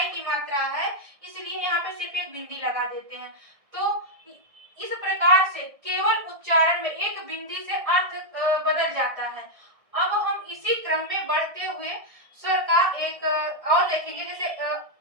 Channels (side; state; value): left; late; 1.6 ms